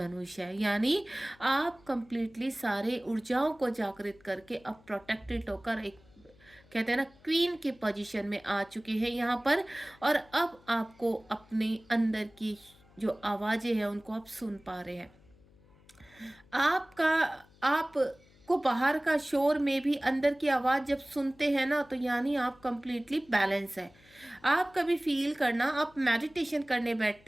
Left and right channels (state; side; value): noise; left; hum, 27 dB below the sound